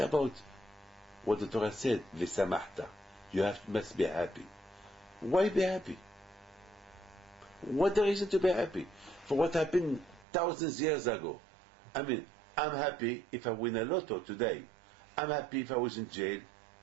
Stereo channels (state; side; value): drops out; left; at 10.2 s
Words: what the Torah said, V'samachta? You must be happy. Why be happy? What the reason to be happy? For what happened thousands of years ago. I mean, I'm happy if I win a lotto today. I'm happy if I was in jail